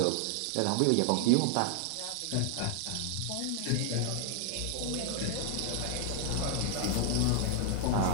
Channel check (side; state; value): both; different; correlation 0.00